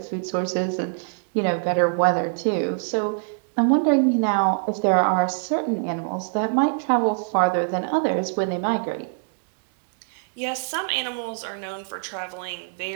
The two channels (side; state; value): left; silent; digital silence